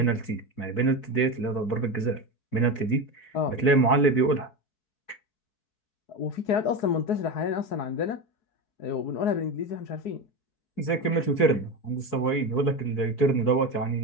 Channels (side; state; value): right; late; 4.6 ms